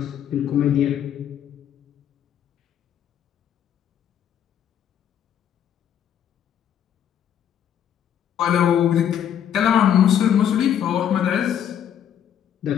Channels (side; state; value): right; quieter; 9.4 dB